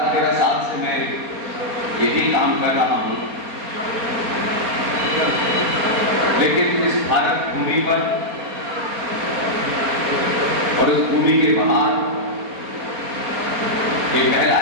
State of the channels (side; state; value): left; late; 4.3 ms